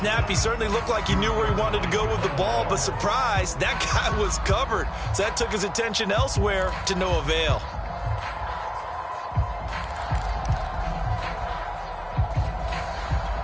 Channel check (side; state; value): both; identical; correlation 1.00